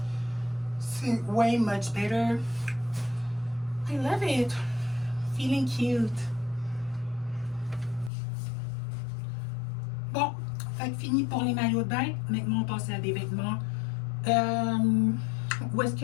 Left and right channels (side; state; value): right; drops out; at 8.1 s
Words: c'est way much better. I love it. Feeling cute. Bon, fait que fini pour les maillots de bain. Maintenant, on passe à des vêtements. Où est-ce